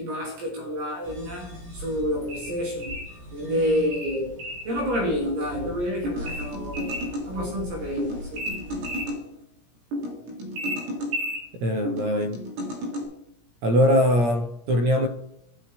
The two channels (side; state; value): left; late; 17 ms